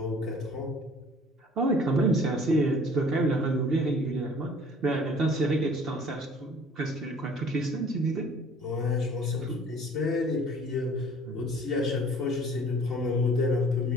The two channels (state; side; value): normal; both; correlation 0.52